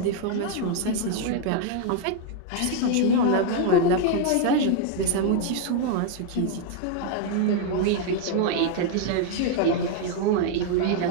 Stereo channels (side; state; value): both; different; correlation 0.00